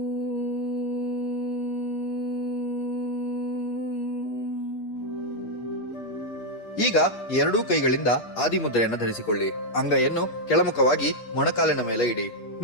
ಈಗ ಎರಡೂ ಕೈಗಳಿಂದ ಆದಿಮುದ್ರೆಯನ್ನು ಧರಿಸಿಕೊಳ್ಳಿ. ಅಂಗೈಯನ್ನು ಕೆಳಮುಖವಾಗಿ ಮೊಣಕಾಲಿನ ಮೇಲೆ ಇಡಿ.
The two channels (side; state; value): right; late; 8.4 ms